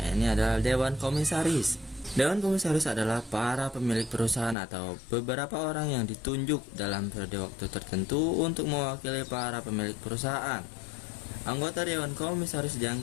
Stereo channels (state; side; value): drops out; right; at 4.5 s